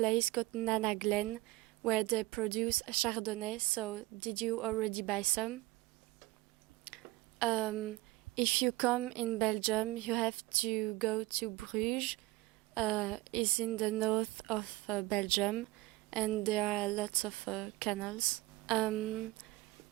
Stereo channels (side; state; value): left; quieter; 20.0 dB